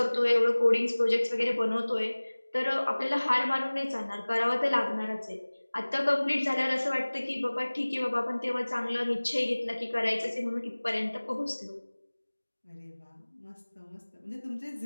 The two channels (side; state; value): both; inverted; correlation -1.00